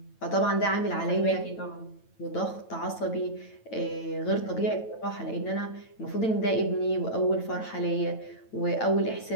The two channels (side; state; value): right; late; 9.1 ms